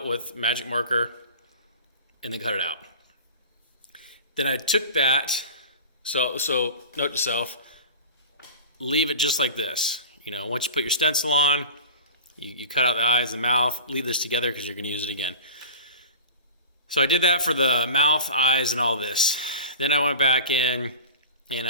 with magic marker and then cut it out. Then I took that, so note to self, leave it just like this. Once you put your stencil on, you cut out the eyes and mouth, leave this together because you're going to use it again. So I did that for the mouth, eyes, and all this. Then I went back in and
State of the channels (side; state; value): both; inverted; correlation -0.34